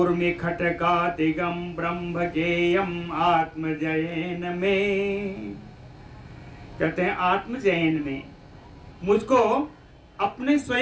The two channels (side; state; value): both; identical; correlation 1.00